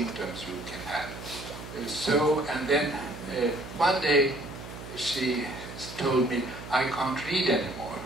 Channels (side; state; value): right; noise; hum, 12 dB below the sound